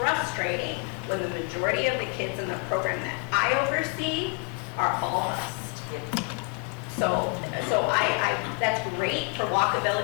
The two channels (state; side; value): quieter; right; 35.4 dB